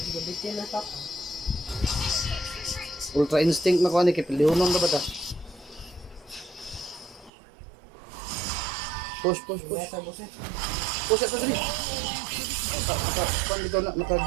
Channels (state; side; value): drops out; left; at 7.3 s